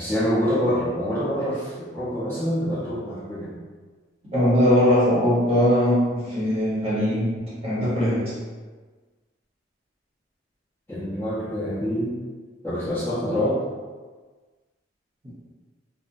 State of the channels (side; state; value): both; normal; correlation 0.51